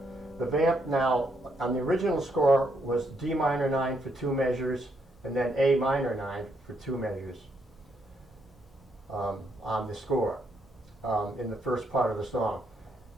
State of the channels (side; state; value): both; normal; correlation 0.75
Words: the vamp now, on the original score, was D minor 9 for 2 measures, and then A minor 9 for 2 measures on the score in the first part of the song.